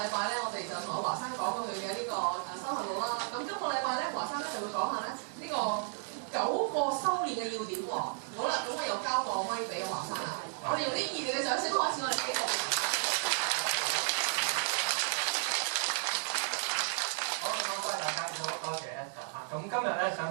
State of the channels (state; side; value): silent; left; 55 dB below the other